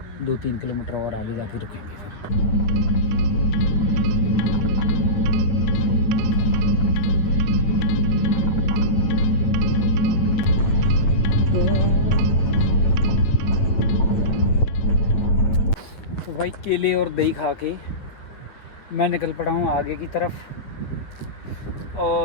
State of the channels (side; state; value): right; late; 8.9 ms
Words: 2-3 किलोमीटर और आगे जाके रुकेंगे फिर। तो भाई केले और दही खा के मैं निकल पड़ा हूँ आगे की तरफ।